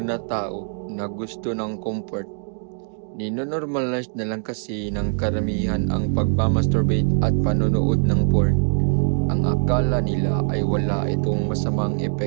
na tao na gusto ng comfort. Ninonormalize na lang kasi ng karamihan ang pagmamasturbate at panonood ng porn. Ang akala nila ay wala itong masamang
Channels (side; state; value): left; silent; 64 dB below the other